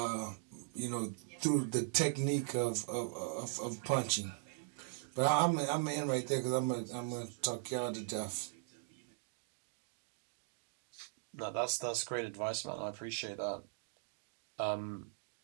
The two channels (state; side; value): silent; left; digital silence